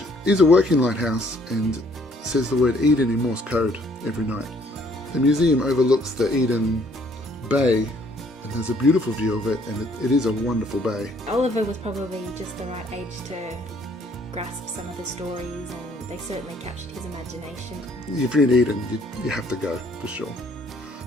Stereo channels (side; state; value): both; normal; correlation 0.63